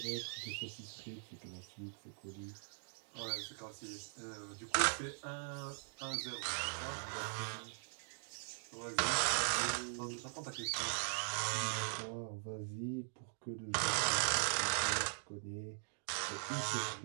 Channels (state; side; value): silent; left; digital silence